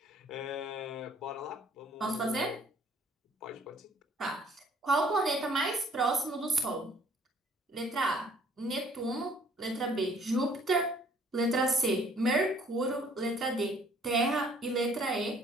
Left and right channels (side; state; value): both; normal; correlation 0.58